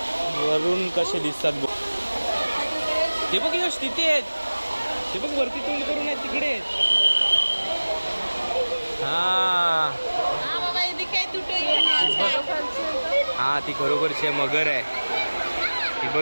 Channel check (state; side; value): inverted; both; correlation -1.00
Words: वरून कसे दिसतात बघ. ते बघ यश तिथे आहेत. ते बघ वरती तोंड करून आहेत तिकडे. हा हा ती खरोखरची मगर आहे. ती